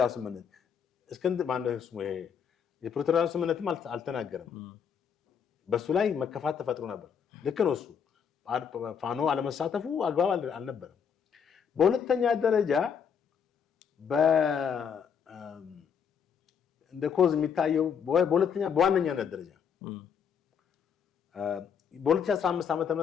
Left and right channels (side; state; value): right; quieter; 7.2 dB